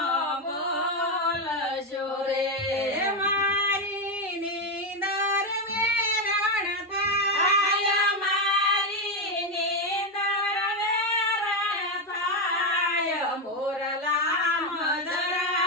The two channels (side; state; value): both; normal; correlation 0.08